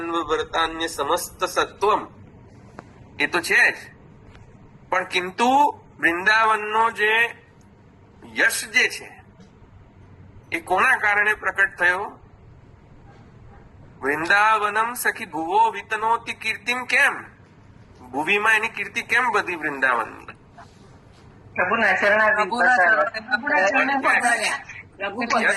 વર્તાન્ય સમસ્ત સત્વમ. એ તો છે જ, પણ કિંતુ વૃંદાવનનો જે યશ જે છે એ કોના કારણે પ્રકટ થયો? વૃંદાવનમ સખી ભુવો વિતનોતિ કીર્તિમ. કેમ? ભુવીમાં એની કીર્તિ કેમ બધી વૃંદાવનની? પ્રભુના ચરણારવિંદ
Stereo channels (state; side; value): identical; both; correlation 1.00